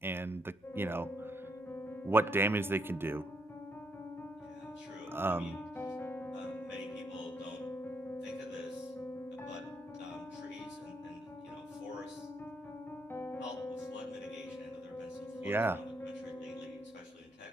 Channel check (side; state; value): both; normal; correlation 0.75